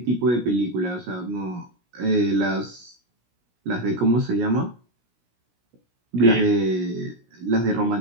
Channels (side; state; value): left; late; 17 ms